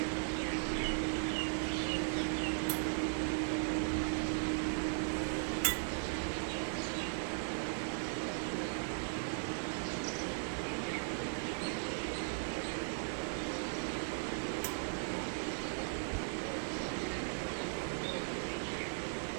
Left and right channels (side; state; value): left; silent; digital silence